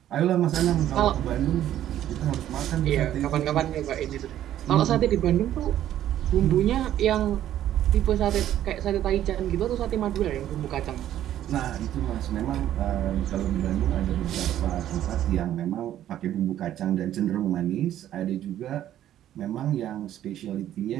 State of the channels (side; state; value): left; quieter; 11.9 dB